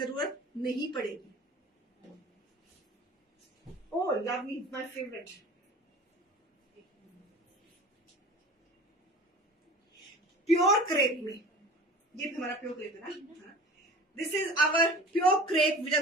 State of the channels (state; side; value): normal; both; correlation 0.40